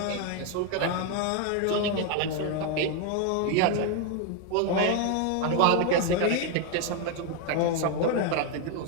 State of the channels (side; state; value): both; different; correlation 0.01